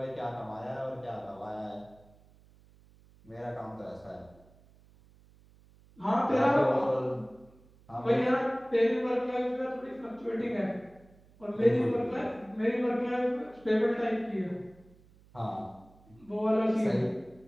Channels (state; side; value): noise; right; hum, 27 dB below the sound